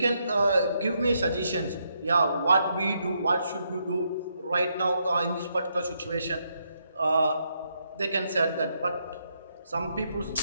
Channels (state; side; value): inverted; both; correlation -0.78